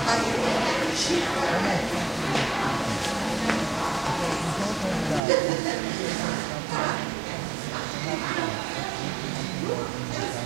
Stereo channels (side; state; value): left; drops out; at 5.2 s